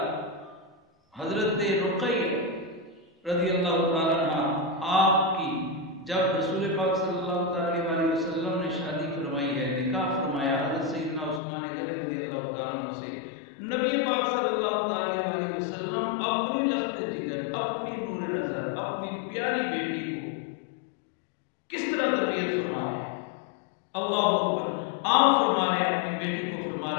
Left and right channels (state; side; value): drops out; right; at 11.4 s